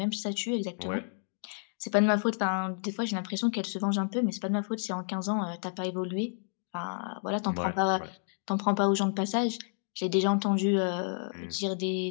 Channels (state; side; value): silent; right; digital silence